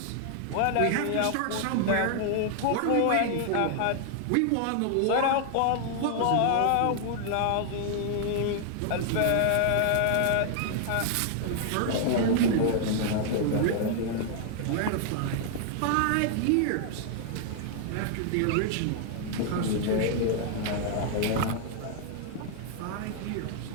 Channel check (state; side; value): different; both; correlation 0.00